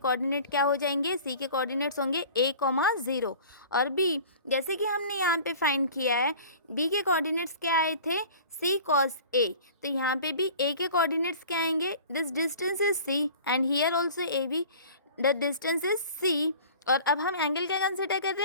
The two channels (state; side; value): inverted; both; correlation -0.44